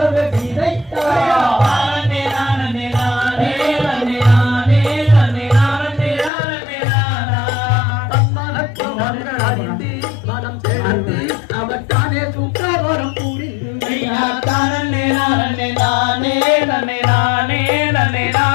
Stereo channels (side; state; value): right; drops out; at 6.3 s